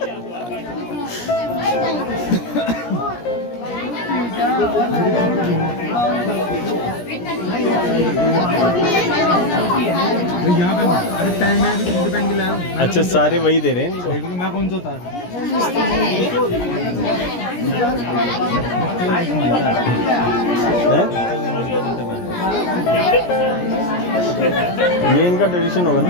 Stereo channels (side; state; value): right; late; 17 ms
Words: यहाँ पे अरे पहन, मैं भी तुझे पहन के लाया हूँ। अच्छा, सारे वही दे रहे हैं इनको। देख लो मैं कौन सा उतार। ये इनका ट्रेडिशन होगा ना।